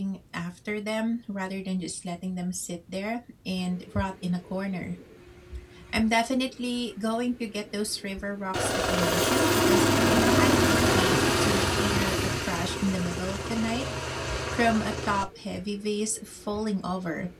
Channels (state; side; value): identical; both; correlation 1.00